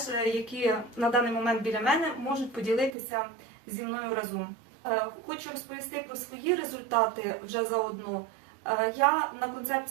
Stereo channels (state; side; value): drops out; left; at 3.0 s